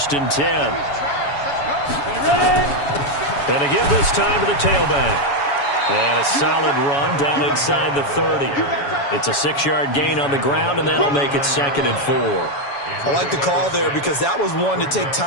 and 10. And to give this time to the tailback. And a solid run down inside the 30. It's a 6-yard gain on the ground, and that'll make it 2nd and 4. I like the call there because that was one to take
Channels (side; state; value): right; late; 7.1 ms